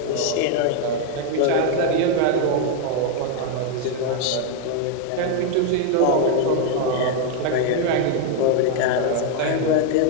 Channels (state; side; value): different; both; correlation 0.00